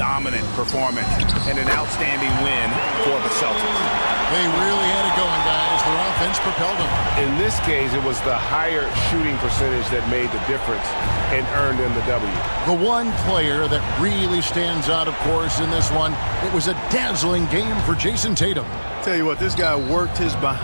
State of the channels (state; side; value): inverted; both; correlation -1.00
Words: performance and an outstanding win for the Celtics. They really had it going, guys. Their offense propelled them. In this case, it was the higher shooting percentage that made the difference and earned them the W. The one player that really stands out, of course, in this one, it was a dazzling game for Jason Tatum. Tell you what, this guy worked his